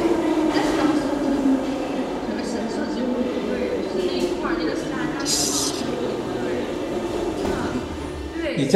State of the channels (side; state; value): both; identical; correlation 1.00